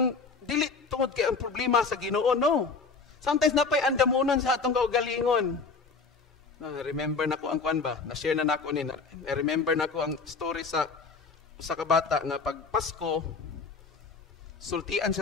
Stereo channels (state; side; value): quieter; right; 4.6 dB